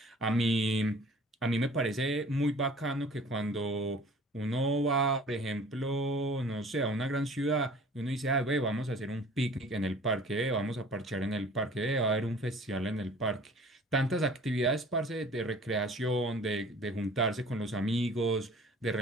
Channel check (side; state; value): both; normal; correlation 0.49